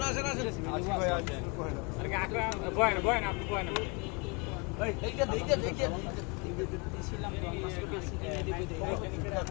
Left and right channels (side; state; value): right; quieter; 31.2 dB